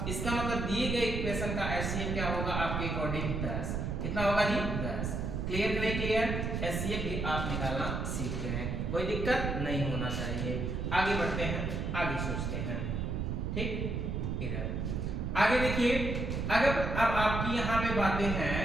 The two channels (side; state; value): right; noise; rumble, 2 dB below the sound